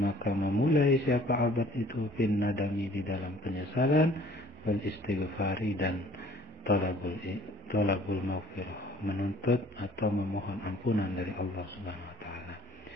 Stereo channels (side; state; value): both; normal; correlation 0.54